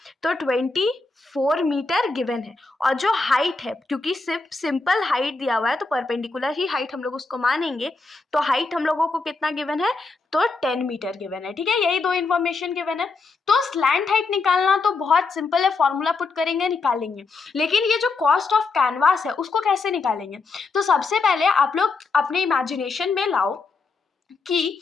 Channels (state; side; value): quieter; right; 4.0 dB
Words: तो 24 मीटर गिवन है। और जो हाइट है, क्योंकि सिर्फ सिंपल हाइट दिया हुआ है तो परपेंडिकुलर ही हाइट हम लोग उसको मानेंगे, तो हाइट हम लोगों को कितना गिवन है, तो 10 मीटर गिवन है, ठीक है। यही दो इन्फॉर्मेशन गिवन है। तो स्लैंट हाइट निकालना तो बहुत सिंपल है, फॉर्मूला पुट करेंगे निकालेंगे। लेकिन ये जो कॉस्ट ऑफ कैनवास है उसको कैसे निकालेंगे, तो सबसे पहले आप लोग अपने इमेजिनेशन में लाओ कि